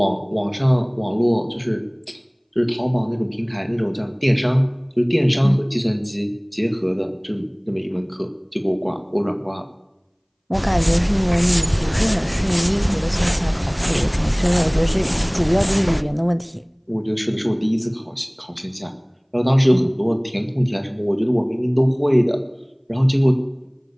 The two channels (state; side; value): identical; both; correlation 1.00